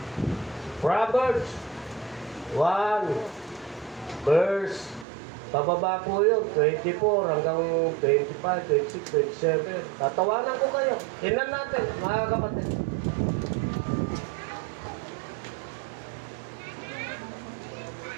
Proverbs 1 verse pababa po yun, 24 hanggang 25, 26, 27. Tatawanan ko kayo. Tingnan natin, mga kapatid.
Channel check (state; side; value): drops out; left; at 5.1 s